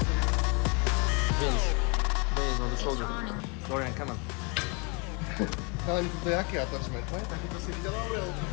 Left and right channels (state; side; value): quieter; right; 32.2 dB